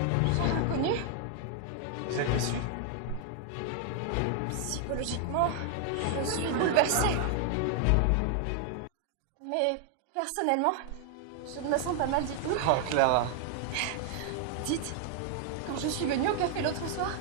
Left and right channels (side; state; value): both; different; correlation 0.00